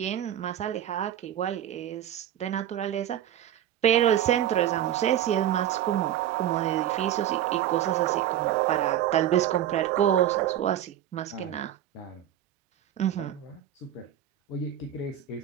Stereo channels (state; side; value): quieter; left; 11.2 dB